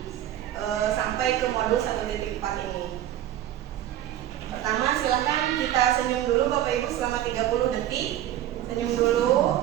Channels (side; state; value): left; quieter; 12.2 dB